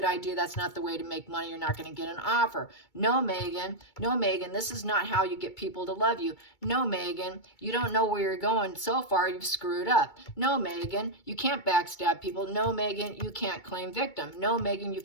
idea. That's not the way to make money. You're not going to get an offer. No, Meghan. No, Meghan, this is not how you get people to love you. No, Meghan, you don't know where you're going. So far, you've screwed up. No, Meghan, you can't backstab people. No, Meghan, you can't claim victim. No, Meghan, you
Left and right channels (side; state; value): right; late; 2.3 ms